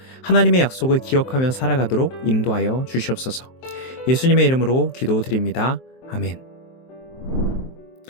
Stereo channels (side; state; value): right; late; 23 ms